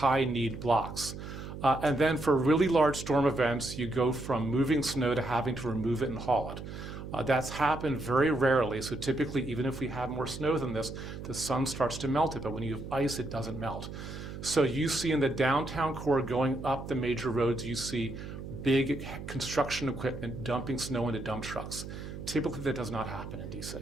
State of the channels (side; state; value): right; noise; hum, 10 dB below the sound